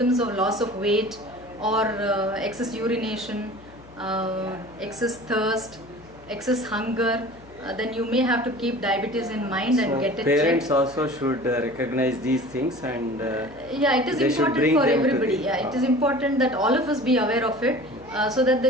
of loss of weight or excess urination, excess thirst, excess hunger, then you may have to keep diabetes in mind and get it parents checked. also should recognize these things, and Yeah, it is they should important bring for them to everybody. the- Yeah, it is important that all of us be aware of it, so that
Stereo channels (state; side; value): noise; left; hum, 23 dB below the sound